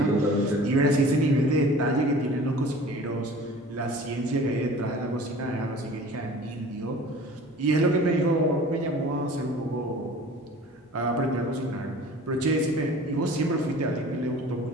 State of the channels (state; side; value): normal; both; correlation 0.44